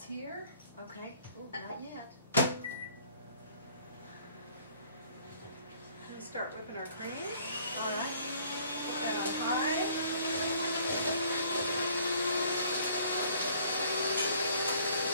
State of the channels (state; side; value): inverted; both; correlation -0.58